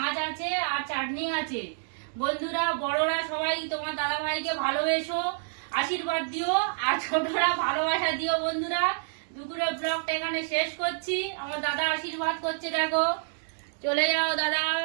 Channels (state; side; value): silent; left; digital silence